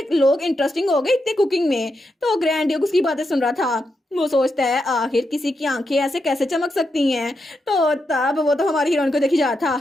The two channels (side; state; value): both; normal; correlation 0.85